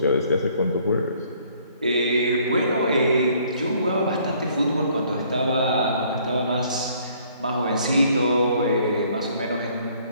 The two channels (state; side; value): inverted; both; correlation -0.61